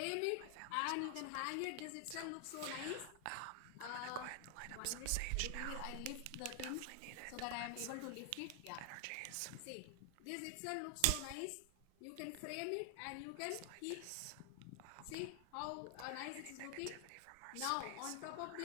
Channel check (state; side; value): different; both; correlation 0.00